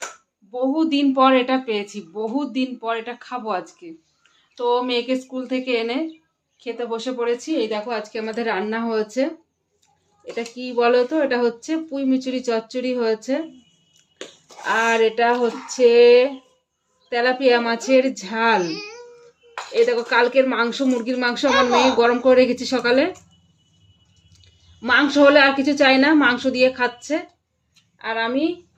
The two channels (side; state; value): both; identical; correlation 1.00